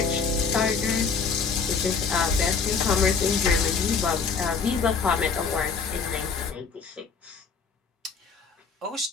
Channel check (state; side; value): quieter; right; 5.4 dB